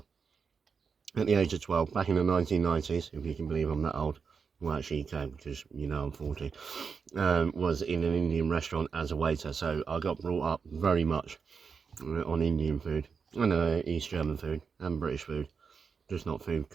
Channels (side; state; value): left; quieter; 5.7 dB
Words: at the age of 12, back in the 1990s, if you can believe I'm that old, well actually you can because I'm 40, was in an Indian restaurant as a waiter. So I got brought up very much on Indian food, and East German food, and British food, just not food